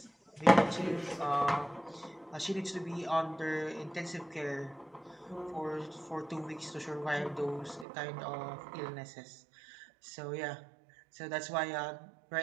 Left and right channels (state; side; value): drops out; left; at 7.9 s